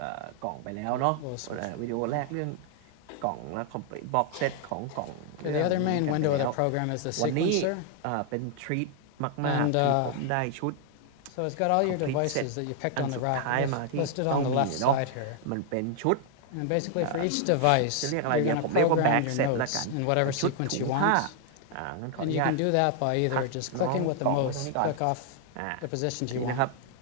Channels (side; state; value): both; different; correlation 0.00